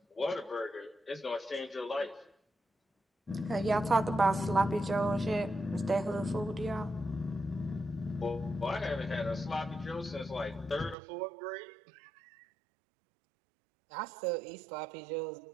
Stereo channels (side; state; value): left; drops out; at 11.0 s